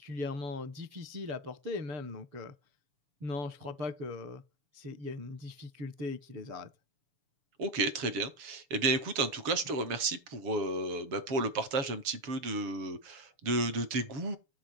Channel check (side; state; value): left; late; 7.0 ms